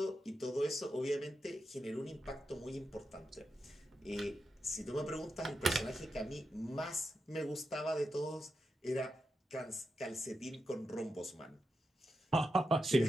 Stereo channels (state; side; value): normal; both; correlation 0.88